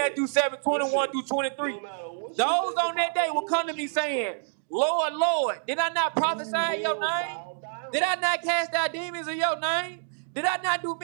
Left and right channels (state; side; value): silent; left; digital silence